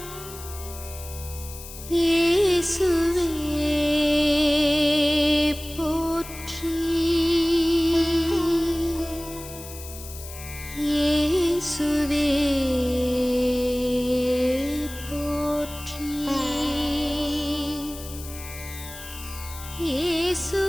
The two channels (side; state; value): left; noise; hiss, 14 dB below the sound